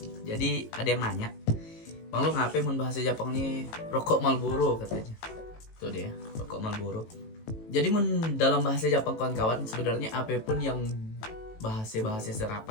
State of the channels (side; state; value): right; late; 18 ms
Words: Jadi ada yang nanya, Bang lu ngapain mun bahasa Jepangnya rokok Marlboro katanya. Tuh dia, rokok Marlboro. Jadi mun dalam bahasa Jepang kawan-kawan sebenarnya apapun yang bahasa